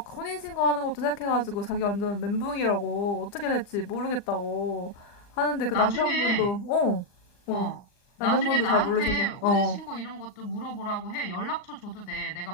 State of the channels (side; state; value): right; late; 39 ms